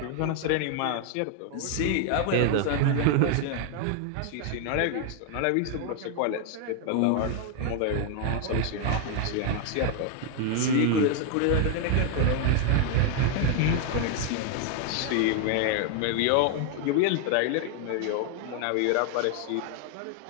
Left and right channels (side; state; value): both; different; correlation 0.00